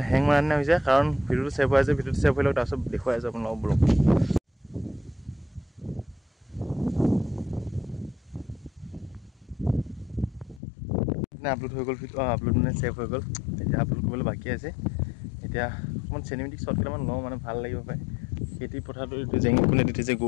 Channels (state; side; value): drops out; right; at 10.6 s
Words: হেং মাৰা নিচিনা হৈছে কাৰণ ভিডিঅ'টো ছেভ হৈ আছে ভিডিঅ'টো ছেভ হৈ লওক তাৰপিছত দেখুৱাই আছোঁ আপোনালোকক ব্লগ আপলোড হৈ গ'ল আপলোড মানে ছেভ হৈ গ'ল এতিয়া আপলোড কৰিবলৈ বাকী আছে এতিয়া অকণমান চিনেমেটিক শ্বট কেইটামান লওঁ মানে ভাল লাগিব পাৰে খেতি পথাৰটো এইটো জেঙি কোনে দি থৈছে